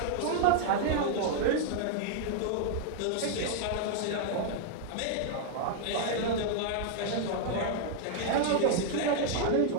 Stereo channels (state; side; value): different; both; correlation -0.01